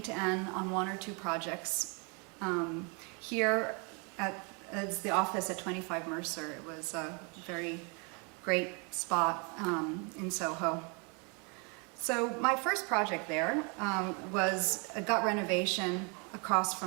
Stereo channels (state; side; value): quieter; left; 33.6 dB